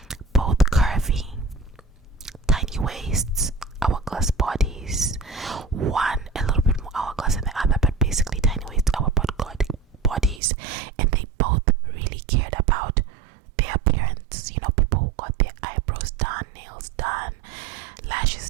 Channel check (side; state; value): left; drops out; at 10.4 s